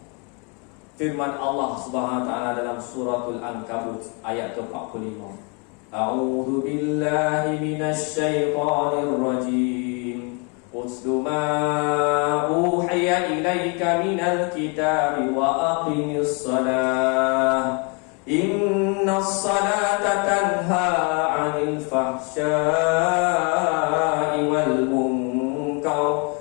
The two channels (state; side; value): quieter; right; 34.2 dB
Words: Firman Allah Subhanahu wa taala dalam suratul Ankabut ayat ke-45. A'udzu billahi minasy syaithanir rajim. Utlu ma uhiya ilaika minal kitabi wa aqimis shalah. Innas salata tanha 'anil fahsya'i wal munkar